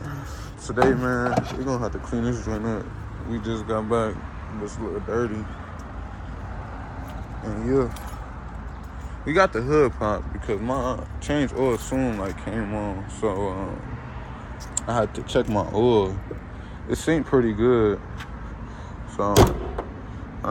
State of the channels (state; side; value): identical; both; correlation 1.00